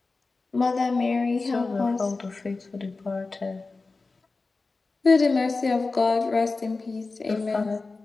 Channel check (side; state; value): right; quieter; 3.8 dB